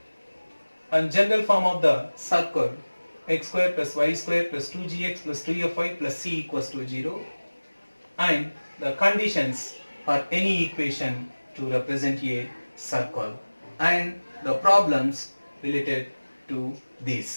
and general form of the circle x square plus y square plus 2gx plus 2fy plus c equals to 0, and the conditions for any equation to represent a circle and the problems related to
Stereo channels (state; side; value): inverted; both; correlation -1.00